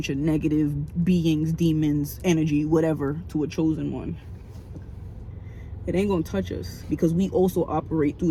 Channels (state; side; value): identical; both; correlation 1.00